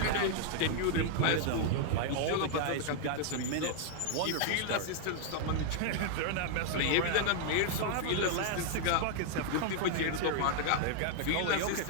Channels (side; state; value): both; different; correlation -0.01